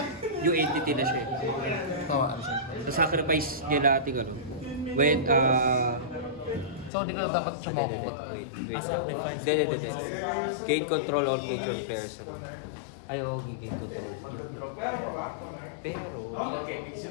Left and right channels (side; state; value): right; drops out; at 6.9 s